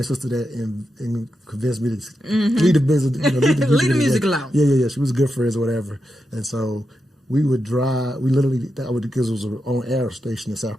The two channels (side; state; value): both; normal; correlation 0.87